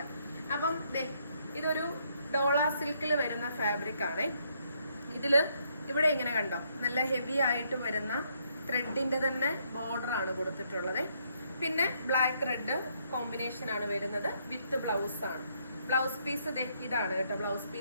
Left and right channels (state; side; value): inverted; both; correlation -0.72